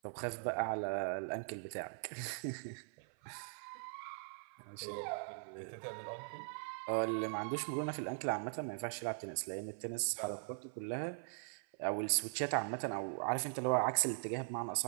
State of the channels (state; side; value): silent; left; 50 dB below the other